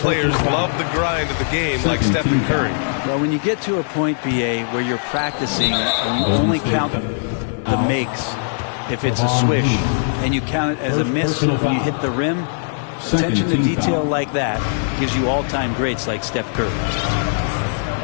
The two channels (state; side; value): silent; right; digital silence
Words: love the grind of the game like Stephen Curry. Well, when you get to a point, B.A., where you're practicing and you only count the makes if it's a swish, and you count it as a miss when you hit the rim, attention to detail like that gives you all-time greats like Steph Curry.